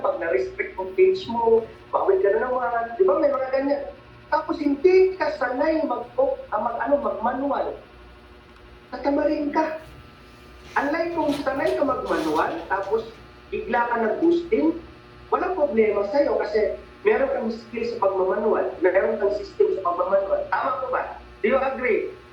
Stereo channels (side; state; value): both; identical; correlation 1.00